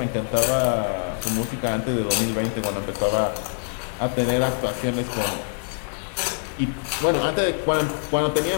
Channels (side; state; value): right; silent; 62 dB below the other